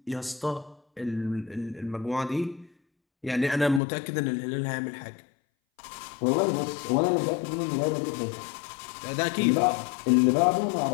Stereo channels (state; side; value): drops out; right; at 3.8 s